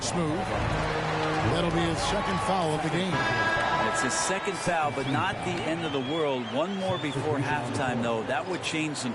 Smooth. That'll be his 2nd foul of the game. It's his 2nd foul, but not the end of the world. One more before halftime, though. That would change some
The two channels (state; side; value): identical; both; correlation 1.00